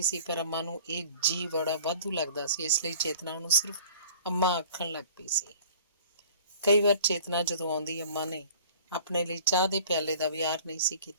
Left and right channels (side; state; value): both; inverted; correlation -0.48